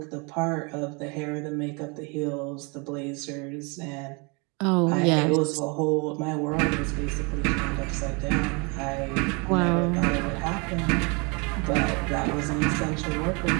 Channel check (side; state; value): left; quieter; 31.0 dB